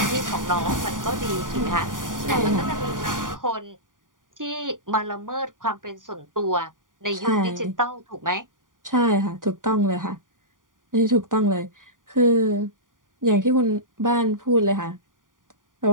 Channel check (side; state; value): left; late; 0.89 ms